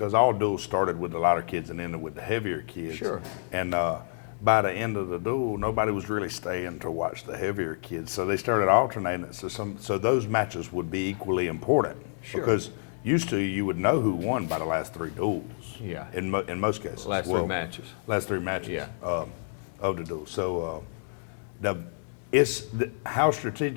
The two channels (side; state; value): right; silent; digital silence